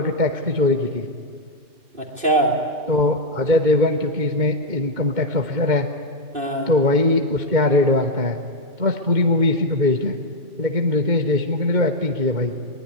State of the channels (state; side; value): late; left; 2.6 ms